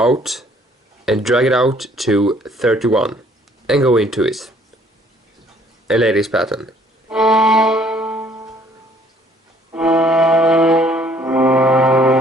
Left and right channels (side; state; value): both; normal; correlation 0.61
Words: and drag it out to 31 and go into it. And lay this pattern.